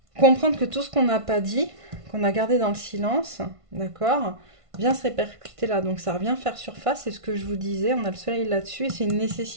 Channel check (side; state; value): left; late; 1.5 ms